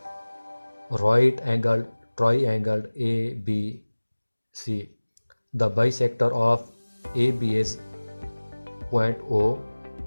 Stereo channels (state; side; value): inverted; both; correlation -1.00